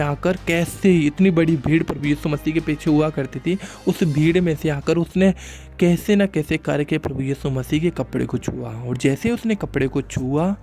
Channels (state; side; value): identical; both; correlation 1.00